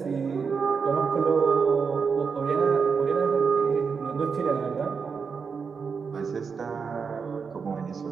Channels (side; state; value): left; quieter; 5.6 dB